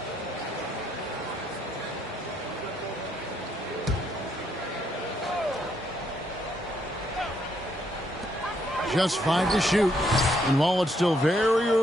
Just 5 to shoot. And while it's still very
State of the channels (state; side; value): normal; both; correlation 0.73